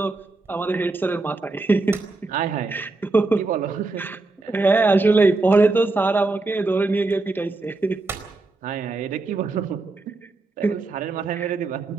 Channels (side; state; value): left; quieter; 3.3 dB